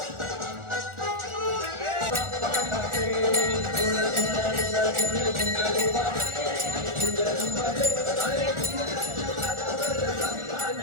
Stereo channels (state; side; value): late; left; 1.4 ms